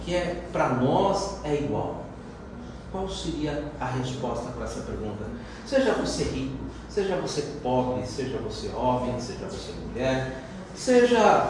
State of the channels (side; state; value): both; identical; correlation 1.00